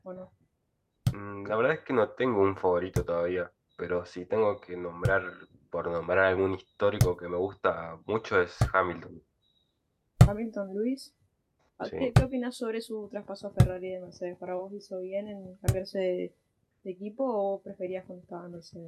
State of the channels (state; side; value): identical; both; correlation 1.00